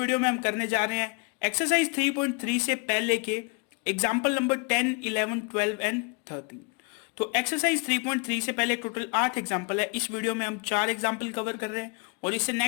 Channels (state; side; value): quieter; right; 35.3 dB